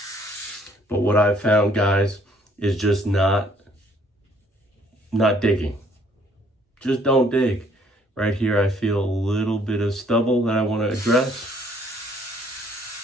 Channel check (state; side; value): normal; both; correlation 0.63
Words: But what I've found, guys, is just not digging. Just don't dig. Right here, I feel a little bit of stubble that I want to address.